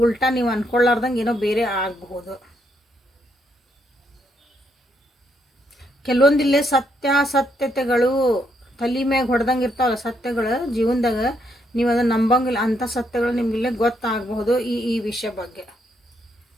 ಉಲ್ಟಾ ನೀವು ಅಂದ್ಕೊಳ್ಳಾರ್ದಂಗೆ ಏನೋ ಬೇರೆ ಆಗಬಹುದು. ಕೆಲವೊಂದಿಲ್ಲೇ ಸತ್ಯತೆಗಳು ತಲೆ ಮ್ಯಾಗ ಹೊಡೆದಂಗೆ ಇರ್ತಾವಲ್ಲ ಸತ್ಯಗಳು ಜೀವನದಾಗ, ನೀವು ಅದನ್ನು ನಂಬಂಗಿಲ್ಲ. ಅಂಥ ಸತ್ಯಗಳು ನಿಮಗಿಲ್ಲೇ ಗೊತ್ತಾಗಬಹುದು ಈ ವಿಷಯ ಬಗ್ಗೆ.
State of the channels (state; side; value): normal; both; correlation 0.75